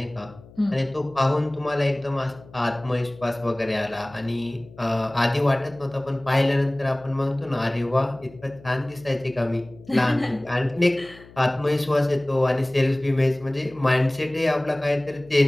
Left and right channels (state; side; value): noise; left; hum, 22 dB below the sound